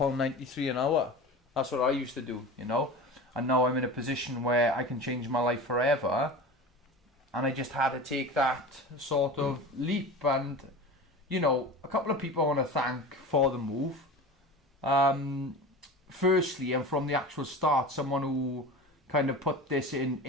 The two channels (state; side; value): normal; both; correlation 0.33